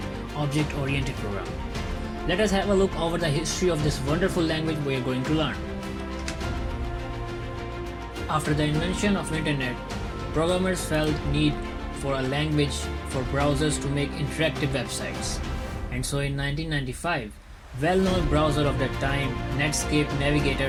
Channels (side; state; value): both; identical; correlation 1.00